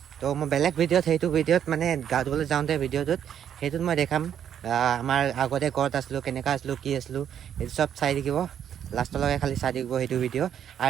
তো মই বেলেগ ভিডিঅ'ত সেইটো ভিডিঅ'ত মানে গা ধুবলৈ যাওঁতে ভিডিঅ'টোত সেইটোত মই দেখাম আমাৰ আগতে ক'ত আছিলোঁ কেনেকুৱা আছিলোঁ কি আছিলোঁ সেইটো চব চাই থাকিব লাষ্টলৈকে খালি চাই থাকিব সেইটো ভিডিঅ'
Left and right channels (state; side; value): quieter; left; 9.3 dB